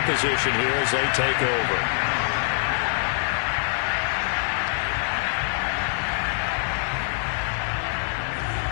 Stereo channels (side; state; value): right; silent; digital silence